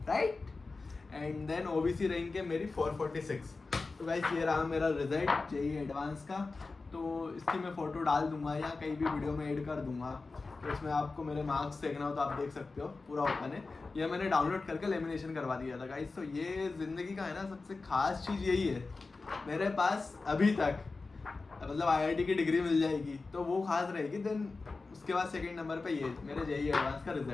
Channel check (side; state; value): right; quieter; 3.8 dB